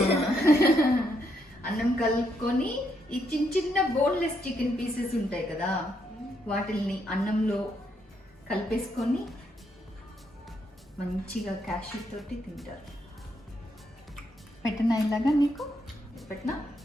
అన్నం కలుపుకొని ఈ చిన్న బోన్లెస్ చికెన్ పీసెస్ ఉంటాయి కదా, వాటిల్ని అన్నంలో కలిపేసుకొని మంచిగా క్యాష్యూ తోటి తింటారు. పెట్టనా ఇలాగా? నీకు పెట్టనా?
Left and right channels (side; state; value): both; normal; correlation 0.77